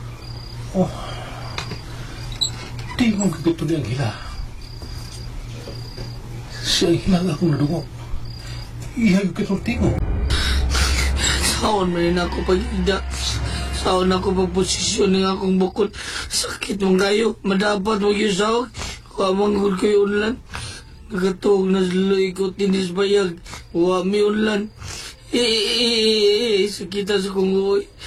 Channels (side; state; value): both; identical; correlation 1.00